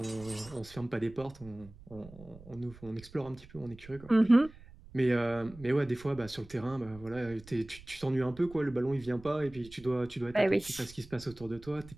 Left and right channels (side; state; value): right; noise; rumble, 20 dB below the sound